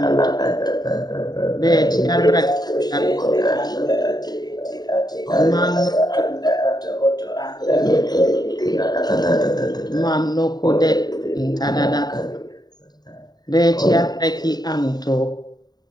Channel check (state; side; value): late; right; 0.20 ms